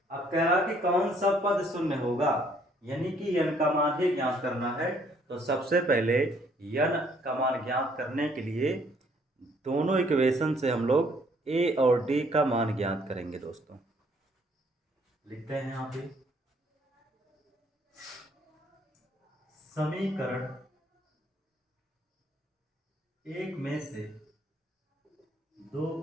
अब कह रहा कि कौन सा पद शून्य होगा, यानी कि n का मान ही ज्ञात करना है। तो सबसे पहले n का मान ज्ञात करने के लिए दोनों इक्वेशन से हम लोग a और d का मान ज्ञात करेंगे दोस्तों। लिखते हैं यहाँ पे, समीकरण 1 में से 2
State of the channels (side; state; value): both; normal; correlation 0.64